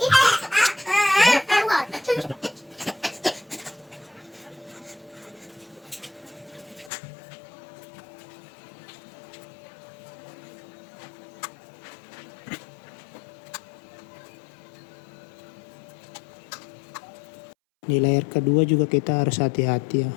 Di layer kedua juga kita harus hati-hati ya,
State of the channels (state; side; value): drops out; right; at 6.9 s